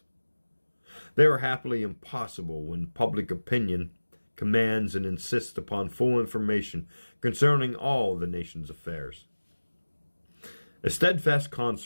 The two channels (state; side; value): inverted; both; correlation -1.00